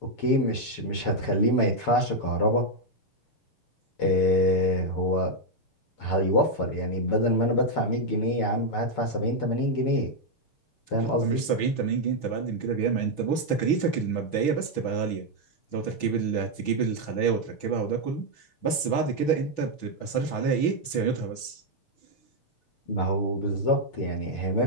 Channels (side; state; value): right; late; 6.1 ms